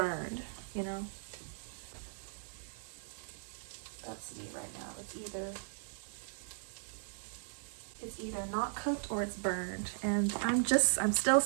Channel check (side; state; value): left; silent; 52 dB below the other